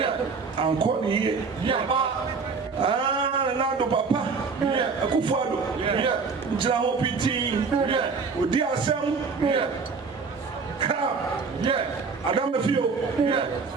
and call ye. Nando Papa, Akufo-Addo, Jina Hopiti, Odi Asem, Adam Mefio,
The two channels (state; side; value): quieter; left; 4.9 dB